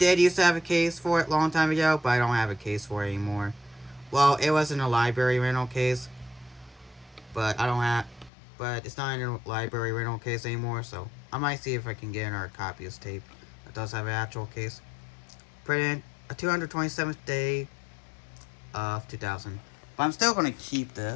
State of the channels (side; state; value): right; drops out; at 8.3 s